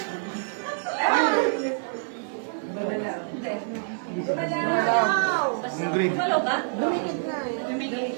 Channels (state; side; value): silent; left; digital silence